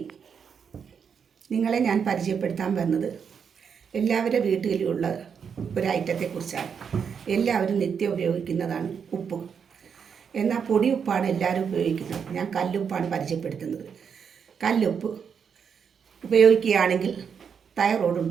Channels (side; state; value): left; quieter; 6.9 dB